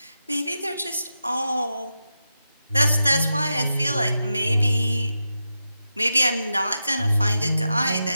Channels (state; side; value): inverted; both; correlation -0.88